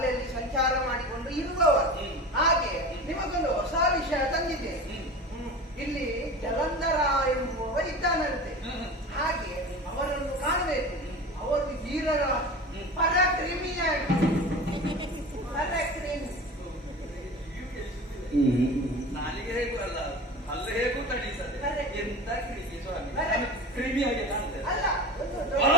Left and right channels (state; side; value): normal; both; correlation 0.33